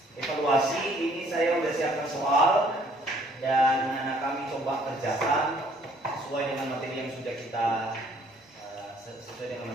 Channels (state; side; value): normal; both; correlation 0.61